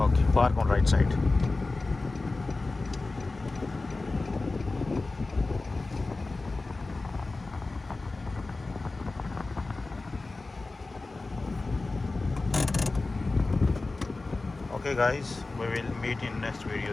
park on right side. Okay guys, we will meet in next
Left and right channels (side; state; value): right; quieter; 3.4 dB